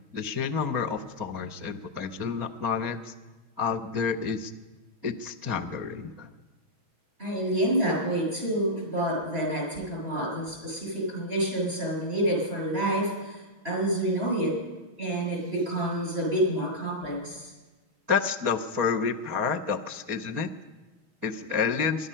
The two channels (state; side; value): late; left; 6.2 ms